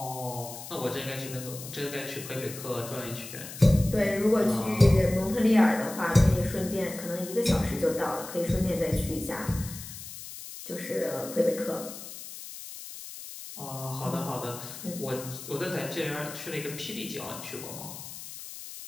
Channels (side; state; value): left; noise; hiss, 12 dB below the sound